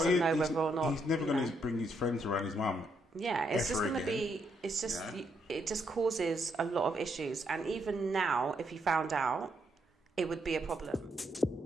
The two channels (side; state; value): both; normal; correlation 0.76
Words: know whether or not he's never going to bring his friends around his mum. Yeah, it's just going to be. It's just it just causes a lot of issues, and even now, if he found out, it would be a problem.